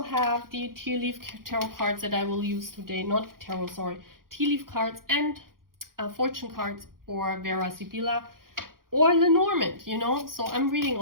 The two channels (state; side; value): late; left; 0.92 ms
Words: have the tea leaf tarot cards that I will use today, not tarot, sorry, tea leaf cards and fortune cards, or Vera Sibilla or Lenormand, you know. So I'm reading